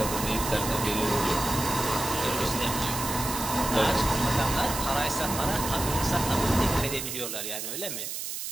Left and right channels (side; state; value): right; noise; hiss, 5 dB below the sound